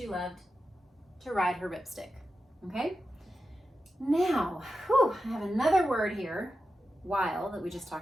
loved to ride her ripstick. Okay? Now, I have another word here while that we just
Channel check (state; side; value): normal; both; correlation 0.90